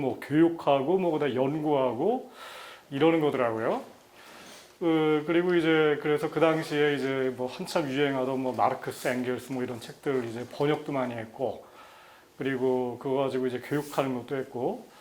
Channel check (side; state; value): both; identical; correlation 1.00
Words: 교육하고 뭐 그다음 연구하고 이러는 거더라고요. 그리고 이제 그래서 그 당시에 이제 뭐 한참 유행하던 뭐 마르크스 앵겔스 뭐 이런 책들 이제 번역도 많이 했고, 그리고 그거 가지고 이제 교육하는 것도 했고,